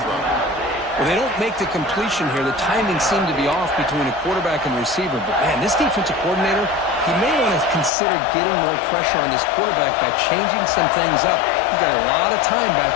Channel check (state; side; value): drops out; right; at 7.9 s